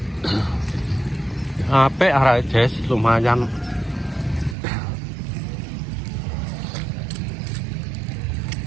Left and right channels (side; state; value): left; drops out; at 4.5 s